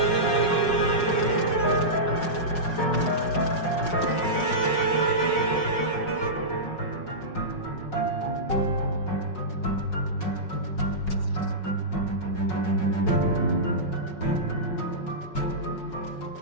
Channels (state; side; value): late; right; 5.4 ms